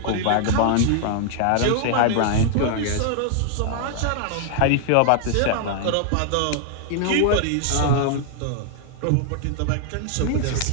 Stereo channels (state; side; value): different; both; correlation 0.00